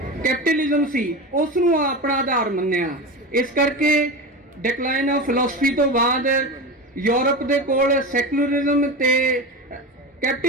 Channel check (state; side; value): normal; both; correlation 0.24